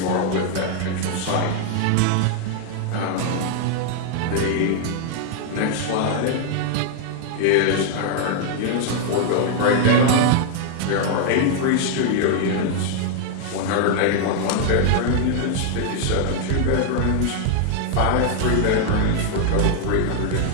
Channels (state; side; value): different; both; correlation 0.00